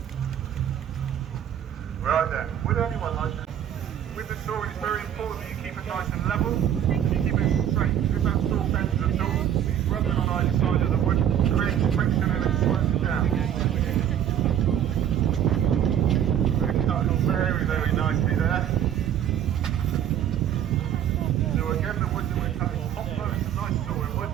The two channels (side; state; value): left; quieter; 10.0 dB